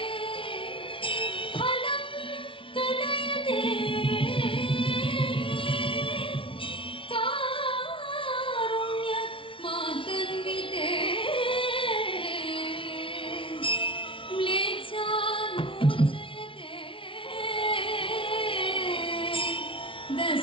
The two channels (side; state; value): right; late; 0.25 ms